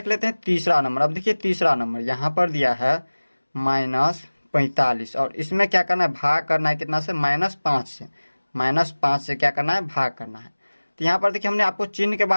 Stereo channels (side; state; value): both; inverted; correlation -1.00